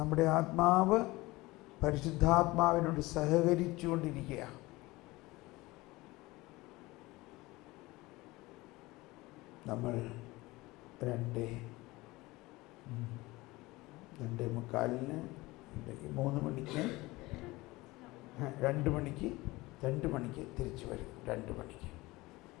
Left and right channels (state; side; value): quieter; right; 20.8 dB